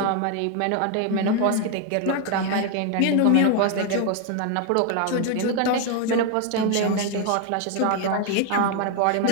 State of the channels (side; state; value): both; different; correlation 0.01